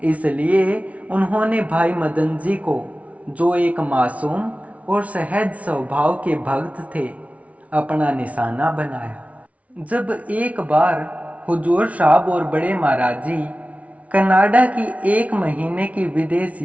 इसलिए उन्होंने भाई मदन जी को, जो एक मासूम और सहज स्वभाव के भक्त थे, अपना निशाना बनाया। जब एक बार हुजूर साहब और बड़े महाराज जी कनाडा की 1 महीने की विदेश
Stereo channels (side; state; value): left; late; 0.066 ms